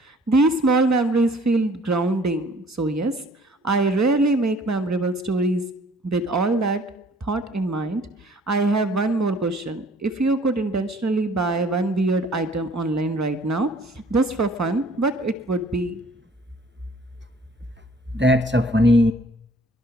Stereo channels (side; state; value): both; normal; correlation 0.55